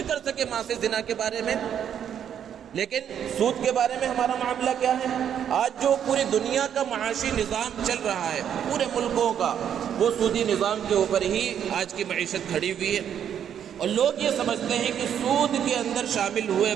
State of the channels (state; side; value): quieter; left; 9.1 dB